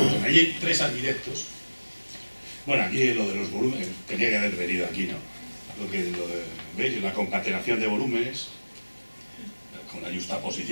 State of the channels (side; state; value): both; inverted; correlation -1.00